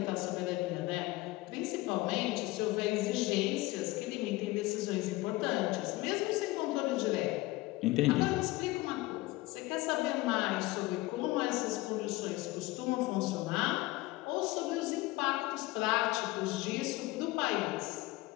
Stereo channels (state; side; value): quieter; right; 19.9 dB